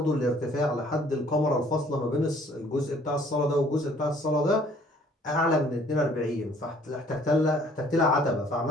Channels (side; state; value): both; normal; correlation 0.58